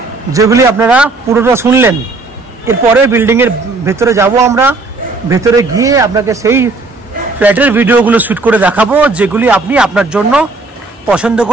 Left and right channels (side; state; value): left; quieter; 3.5 dB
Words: যেগুলি আপনারা পুরোটা শুনলেন। এরপরে বিল্ডিংয়ের ভেতরে যাব আমরা, ভেতরে গিয়ে আপনাকে সেই ফ্ল্যাটের ভিডিওগুলো শ্যুট করে দেখাবো যেগুলি আপনি আপনার জন্য পছন্দ